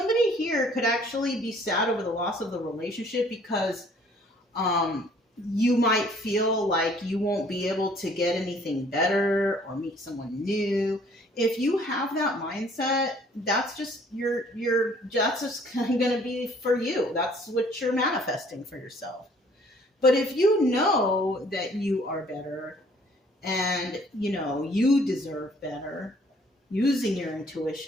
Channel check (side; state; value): both; normal; correlation 0.58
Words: here could actually be sad over the loss of the relationship because you might feel like you won't be able to get anything better or meet someone new. If you have that mindset, that's just that's just going to be for you. That's what you're manifesting for yourself. But if you know that you are better, and, you know, you deserve better, using your